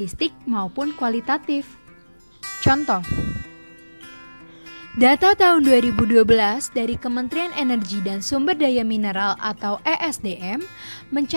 maupun kualitatif. Contoh, data tahun 2012 dari Kementerian Energi dan Sumber Daya Mineral atau ESDM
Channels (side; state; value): both; inverted; correlation -1.00